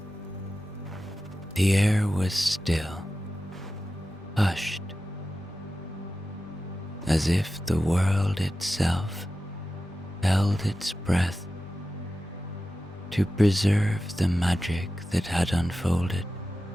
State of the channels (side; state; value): both; normal; correlation 0.93